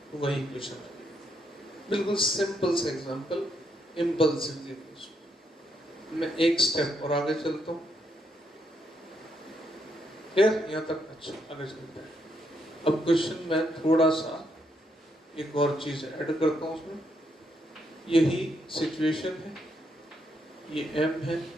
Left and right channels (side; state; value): both; normal; correlation 0.77